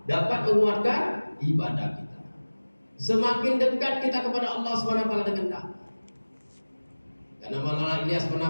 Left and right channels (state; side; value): inverted; both; correlation -1.00